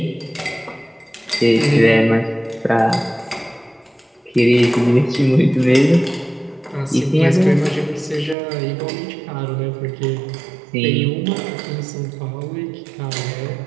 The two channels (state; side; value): drops out; left; at 8.3 s